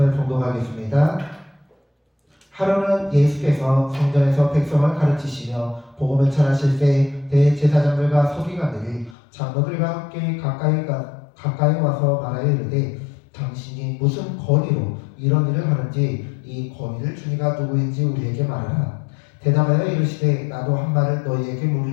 봉독하겠습니다. 하루는 예수께서 성전에서 백성을 가르치시며 복음을 전하실 때 대제사장들과 서기관들이 장로들과 함께 가까이 와서 말하여 이르되 당신이 무슨 권위로 이런 일을 하는지 이 권위를 주니가 누구인지 우리에게 말하라. 대답하여 이르시되 나도 한 말을 너희에게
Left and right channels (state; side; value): drops out; right; at 9.2 s